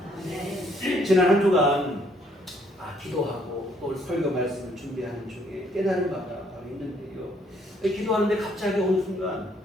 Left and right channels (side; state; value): both; normal; correlation 0.67